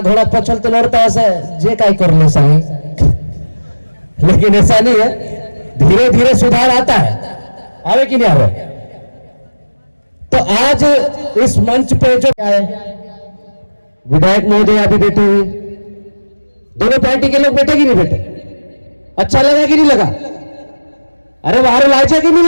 घोड़ा पछल तो लड़ता ऐसे जे काय कर ले सही। लेकिन ऐसा नहीं है, धीरे धीरे सुधार आता है, आवे कि नहीं आवे। तो आज इस मंच पे जो आए विधायक महोदय अभी बैठे हुए, दोनों पार्टी के लोग बैठे कि नहीं बैठे? अच्छा लगा कि नहीं लगा? अरे वारू लायचे की नहीं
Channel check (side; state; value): both; inverted; correlation -1.00